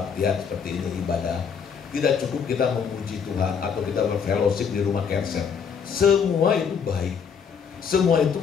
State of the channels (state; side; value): quieter; right; 6.7 dB